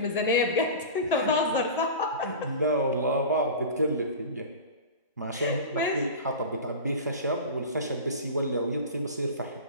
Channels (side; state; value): both; inverted; correlation -0.31